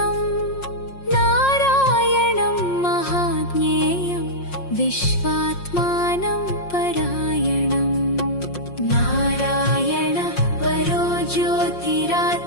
नारायणं महाज्ञेयं विश्वात्मानं परायणं नारायण परो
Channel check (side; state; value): right; late; 5.6 ms